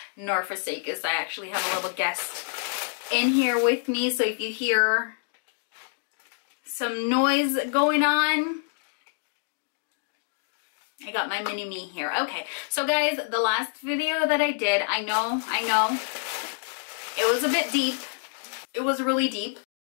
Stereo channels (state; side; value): silent; right; digital silence